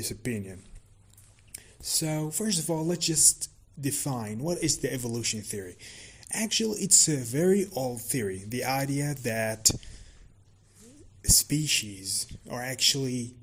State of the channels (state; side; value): identical; both; correlation 1.00